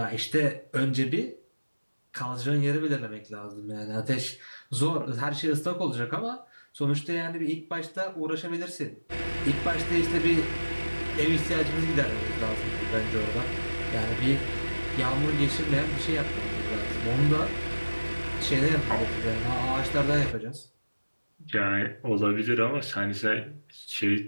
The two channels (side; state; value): both; inverted; correlation -1.00